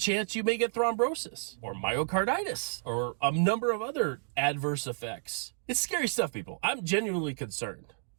you may get thrombosis or myocarditis or a number of other adverse effects. It's scary stuff, people. I'm genuinely concerned.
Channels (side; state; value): left; silent; digital silence